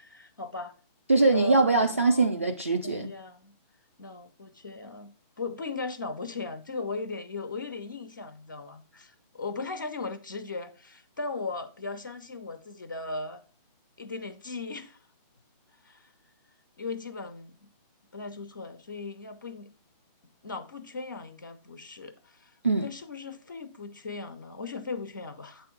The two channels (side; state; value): both; inverted; correlation -0.66